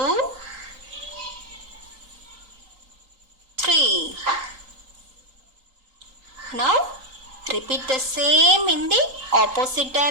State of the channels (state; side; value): late; left; 3.8 ms